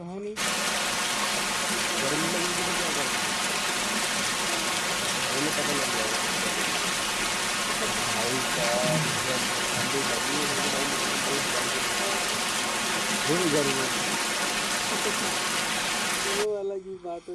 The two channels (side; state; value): both; identical; correlation 1.00